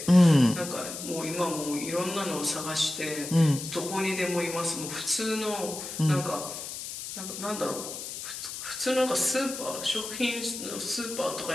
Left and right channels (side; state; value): left; noise; hiss, 8 dB below the sound